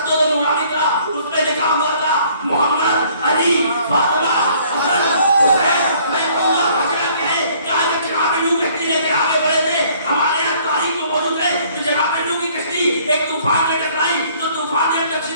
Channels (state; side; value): inverted; both; correlation -0.59